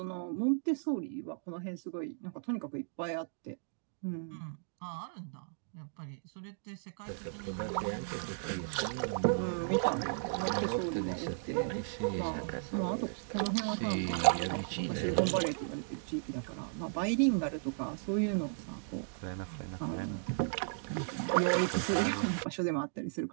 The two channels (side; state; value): left; silent; digital silence